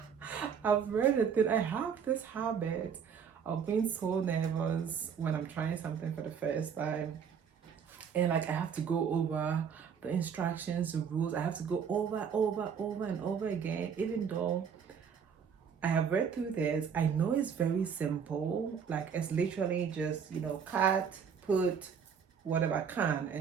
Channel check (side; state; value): left; quieter; 7.1 dB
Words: I've read it that I have this habit of being so nervous when I'm trying something for the first time, and like I have to go over the instructions, the rules. I have to go over and over again, even though I have read through this. I know it's very simple. Like it's literally just, cut, put whatever I can